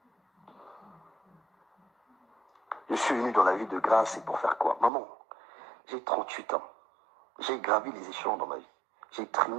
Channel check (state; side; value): drops out; left; at 4.9 s